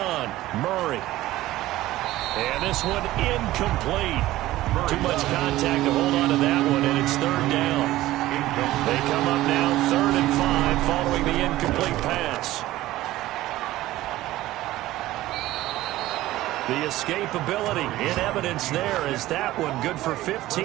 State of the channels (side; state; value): left; quieter; 16.1 dB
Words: Murray. And this one incomplete. Too much contact to hold on to that one, and it's 3rd down. They come up now 3rd and 5 following the incomplete pass. The escapability in evidence there as that one good for